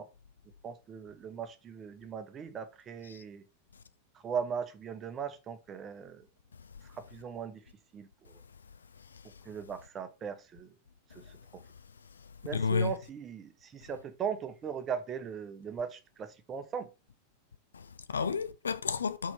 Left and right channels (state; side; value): normal; both; correlation -0.15